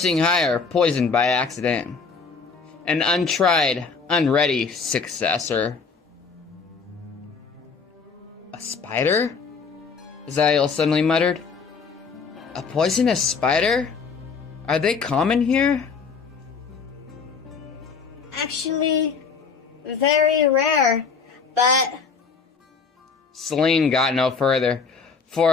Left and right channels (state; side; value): quieter; right; 5.3 dB